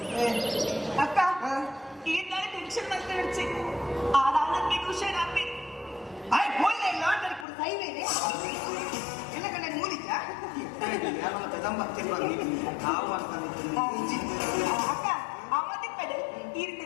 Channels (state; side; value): drops out; right; at 7.5 s